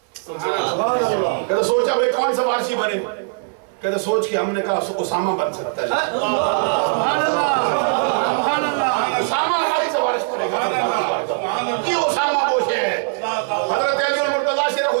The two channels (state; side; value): silent; left; digital silence